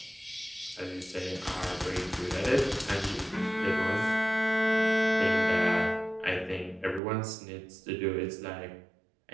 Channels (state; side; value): drops out; left; at 7.0 s